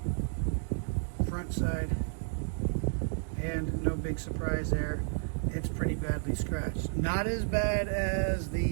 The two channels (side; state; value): left; silent; digital silence